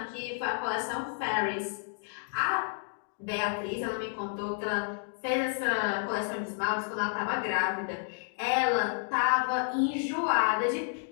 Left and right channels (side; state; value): right; silent; digital silence